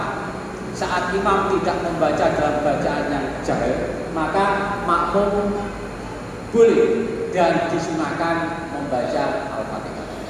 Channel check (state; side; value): identical; both; correlation 1.00